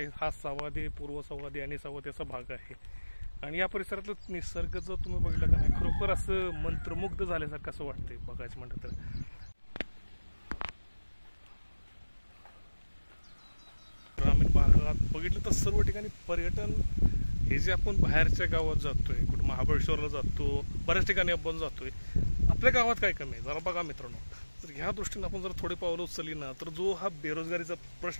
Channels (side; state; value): both; inverted; correlation -1.00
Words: हा सह्याद्री, पूर्व सह्याद्री आणि सह्याद्री असा भाग आहे. आणि या परिसरातलं निसर्ग जर तुम्ही बघितलं का नाही, खरोखर असं मंत्रमुग्ध झाल्यासारखं असं वाटतंय बघायचं म्हटलं तर. ग्रामीण भागात बघितलं तर सर्व ठिकाणी पर्यटन हे जे आपण बाहेरच्या गावात जातोय, कुठं महाबळेश्वरला जातो, बऱ्याच ठिकाणी आपण जातोय, आपल्या गावात काय कमी आहे जरा बघा मित्रांनो. तर ह्या दृष्टीने आपण जर थोडे पावलं उचलली ना, तर जो हा बेरोजगारीचा